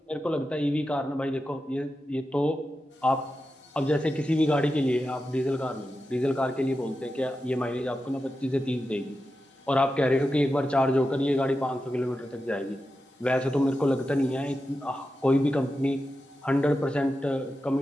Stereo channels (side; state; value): both; normal; correlation 0.90